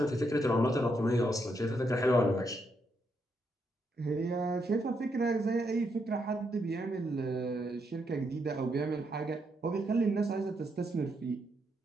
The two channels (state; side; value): normal; both; correlation 0.78